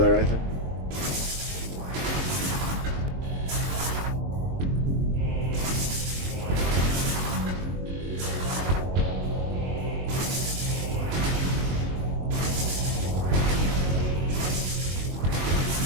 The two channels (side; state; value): left; late; 22 ms